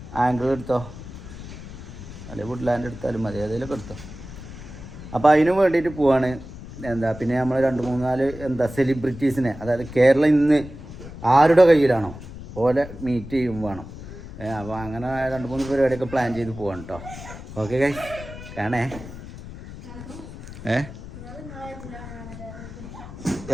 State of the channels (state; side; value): noise; left; rumble, 13 dB below the sound